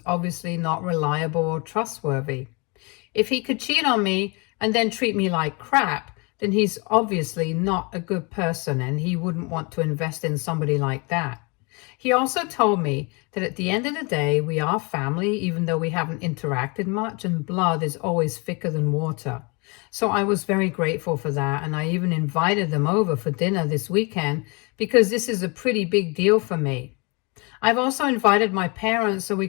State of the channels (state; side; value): quieter; right; 30.1 dB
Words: obviously not reliable or trustworthy. If he could cheat on me and then treat me like crap, then he's obviously not a good person and he wouldn't want to invest in somebody like that. He also told me that at the end of the day, we are family, even though we haven't interacted much, and blood is always thicker than water. So I was very grateful for that, and I even invited them over for dinner this weekend because this is a pretty big deal for me. I've also invited my parents so we